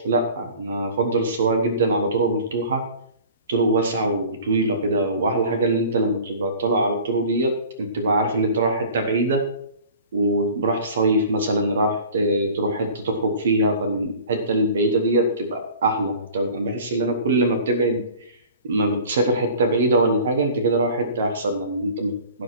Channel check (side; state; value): both; inverted; correlation -0.44